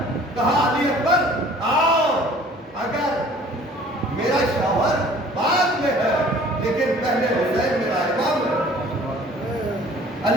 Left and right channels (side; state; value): both; normal; correlation 0.51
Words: کہا علی اکبر آؤ، اگر میرا شوہر بعد میں ہے لیکن پہلے حسین میرا امام ہے۔